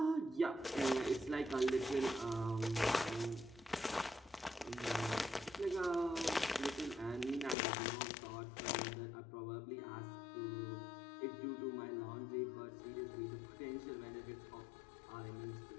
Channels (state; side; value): drops out; right; at 7.6 s